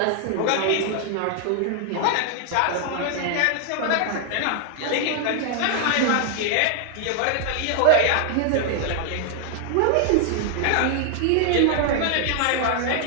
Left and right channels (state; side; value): different; both; correlation 0.00